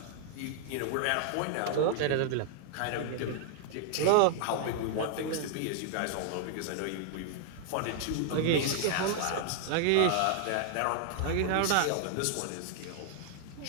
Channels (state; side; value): different; both; correlation 0.00